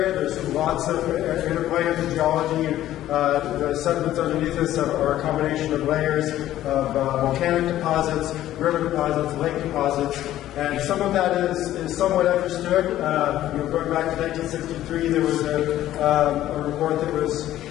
There's lots of interplay of the geology. The sediments underneath us are a combination of layers of volcanic deposits, river deposits, lake deposits, and some of that is somewhat understood. Going back to 1963, there was a report that was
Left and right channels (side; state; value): right; quieter; 13.4 dB